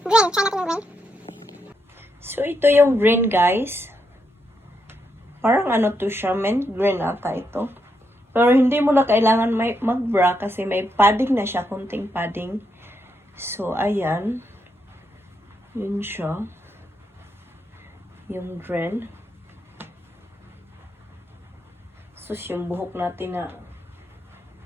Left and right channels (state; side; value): normal; both; correlation 0.81